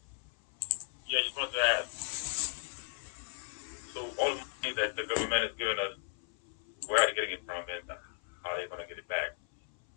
Yeah, just wanted to ask. So all the money that the government is giving us, where are they getting it from, and how are they going to get it back?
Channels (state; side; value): silent; right; 55 dB below the other